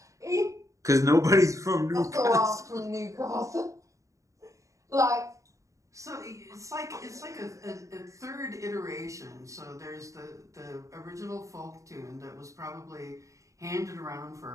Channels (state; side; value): late; left; 0.15 ms